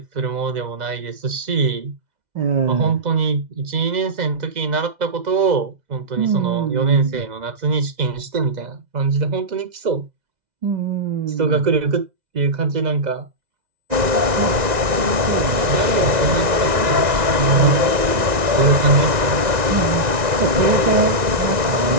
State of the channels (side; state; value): left; late; 2.0 ms